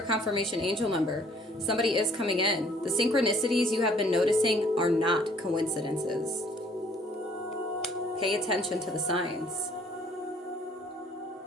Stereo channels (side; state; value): both; normal; correlation 0.59